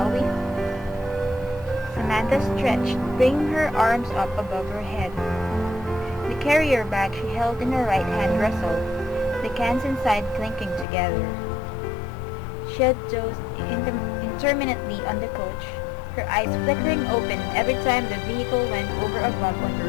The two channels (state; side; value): drops out; right; at 10.9 s